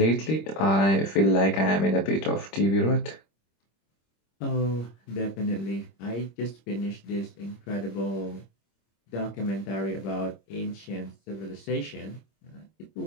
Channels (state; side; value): late; right; 26 ms